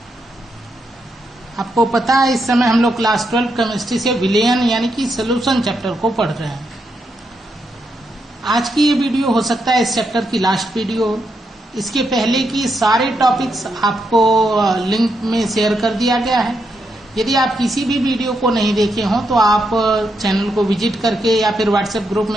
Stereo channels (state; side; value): normal; both; correlation 0.81